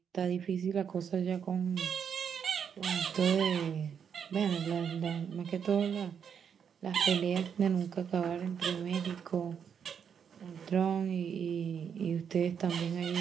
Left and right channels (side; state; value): left; quieter; 7.4 dB